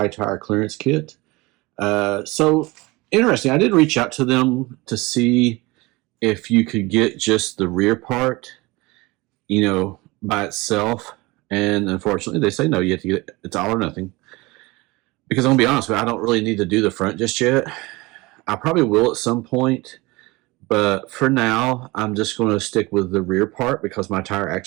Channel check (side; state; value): left; quieter; 22.9 dB